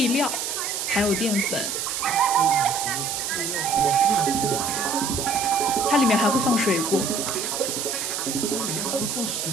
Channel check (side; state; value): right; noise; hiss, 3 dB below the sound